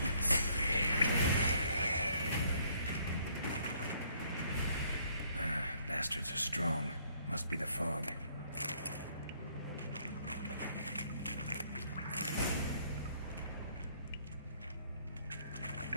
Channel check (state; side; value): inverted; both; correlation -0.65